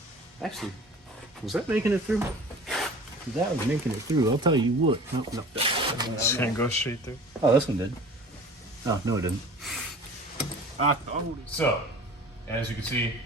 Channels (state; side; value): normal; both; correlation 0.43